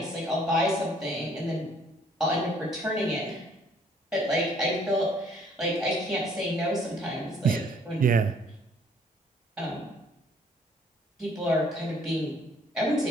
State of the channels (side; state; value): both; normal; correlation 0.61